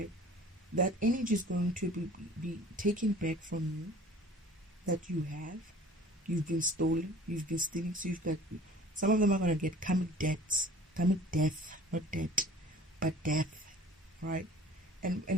That energy is going to be taken back from you, that you have. You've been stolen, you've been stealing, so you've got, some of them are going to get karmic death, not debt, but death, right?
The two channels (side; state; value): both; normal; correlation 0.47